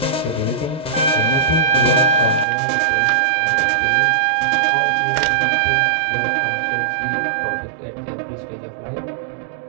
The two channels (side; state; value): left; drops out; at 2.5 s